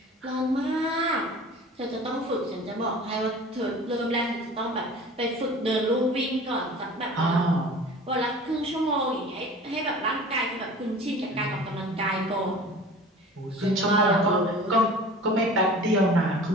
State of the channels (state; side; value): normal; both; correlation 0.41